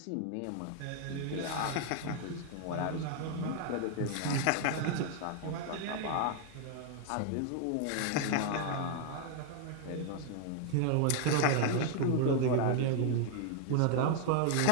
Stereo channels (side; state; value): both; different; correlation 0.00